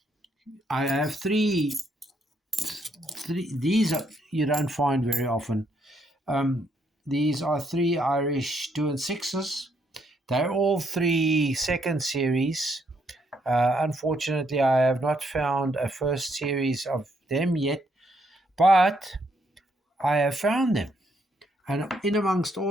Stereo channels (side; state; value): both; normal; correlation 0.73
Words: have three. These you don't find very often. These are 3 Irish 2 and 6s. They're all 3 second series. Unfortunately, I have not found a first series of them yet, but I have found them. And in amongst